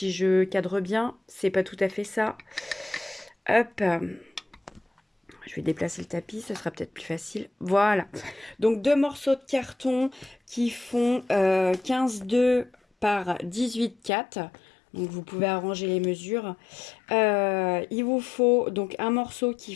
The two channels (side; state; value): right; drops out; at 14.1 s